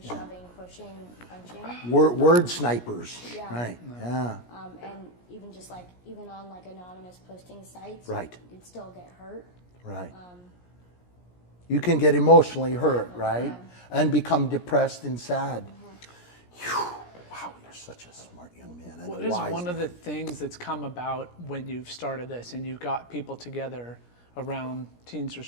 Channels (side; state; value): right; late; 17 ms